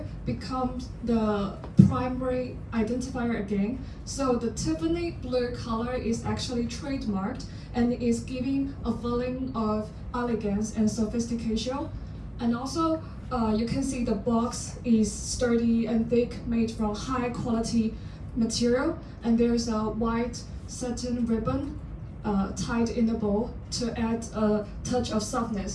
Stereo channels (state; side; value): identical; both; correlation 1.00